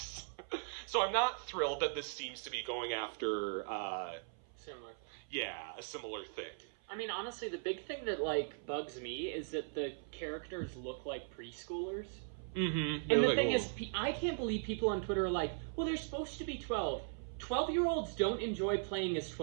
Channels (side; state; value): left; silent; 52 dB below the other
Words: So I'm not thrilled that this seems to be going after, Similar. yeah, a similar thing. I mean, honestly, the big thing that, bugs me is that the characters look like preschoolers. Mm-hmm. And the thing is, I can't believe people on Twitter are like, well, they're supposed to be 12. 12-year-olds don't enjoy playing as